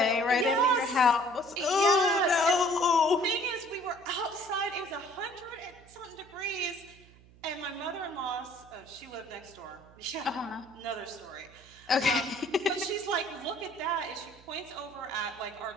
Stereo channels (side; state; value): right; noise; hum, 25 dB below the sound